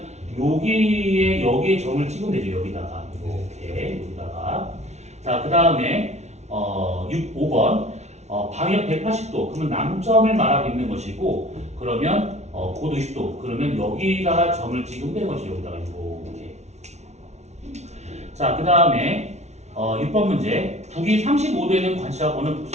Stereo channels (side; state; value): left; late; 0.32 ms